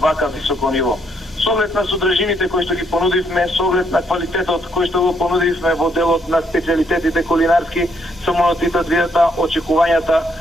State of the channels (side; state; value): both; normal; correlation 0.72